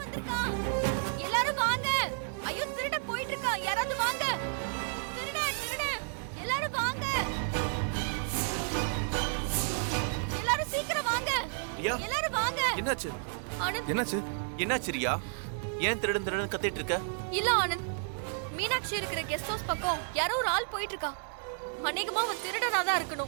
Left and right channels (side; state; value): left; silent; 57 dB below the other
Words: எல்லாரும் வாங்க. ஐயோ, திருட போயிட்டு இருக்கா, யாராவது வாங்க. திருட திருட, எல்லாரும் வாங்க. எல்லாரும் சீக்கிரம் வாங்க. எல்லாரும் வாங்க. என்னாச்சு? ஆனந்த், என்னாச்சு? என்னாச்சு ரியா? ஏன் திருடன் திருடன் கத்திட்டு இருக்க? இல்ல ஆனந்த், மீனாட்சி இருக்கிற கெஸ்ட் ஹவுஸ் பக்கம் யாரோ ஒரு ஆள் போயிட்டு இருக்கா. அநேகமா அவன் திருடனா தான்